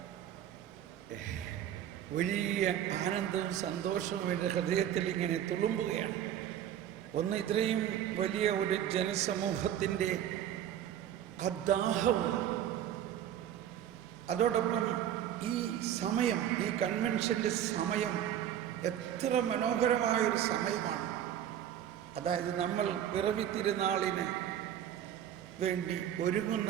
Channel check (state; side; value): quieter; left; 10.6 dB